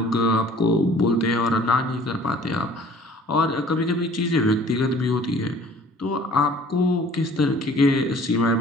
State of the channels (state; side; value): normal; both; correlation 0.51